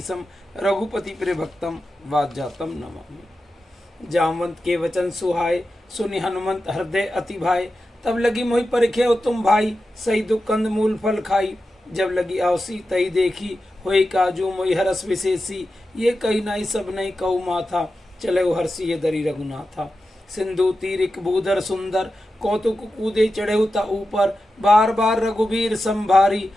रघुपति प्रिय भक्तम वाज्जातम नमामि। जामवंत के वचन सुहाय सुनि हनुमंत हृदय अति भाई तब लगी मोहि परिखे तुम भाई सही दुख कंद मूल फल खाई जब लगी आवसी तई देखी होई काजू मोहि हरस विशेषी ये कही नाई सब नहीं कहु माथा चले हर्षि ये दरी रघुनाथा सिंधु तीरिक भूधर सुंदर कौतुक कूदे चढ़े ता ऊपर बार बार रघुवीर संभारी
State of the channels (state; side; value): normal; both; correlation 0.91